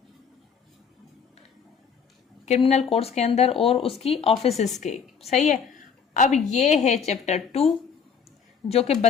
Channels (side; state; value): right; quieter; 6.5 dB